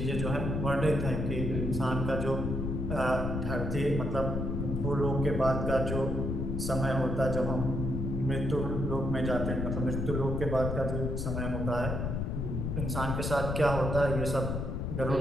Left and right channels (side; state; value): left; noise; rumble, 2 dB below the sound